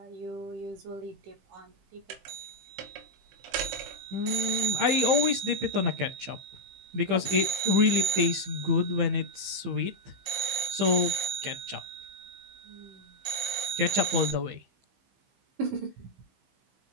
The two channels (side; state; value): left; late; 15 ms